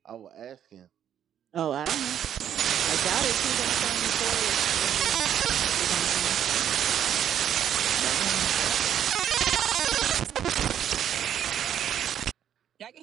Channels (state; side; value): quieter; left; 9.8 dB